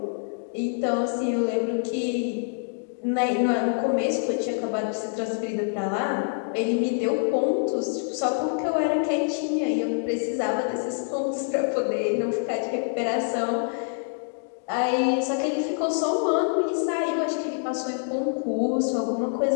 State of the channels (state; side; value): silent; right; 61 dB below the other